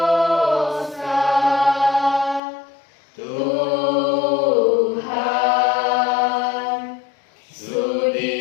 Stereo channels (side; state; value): right; drops out; at 2.4 s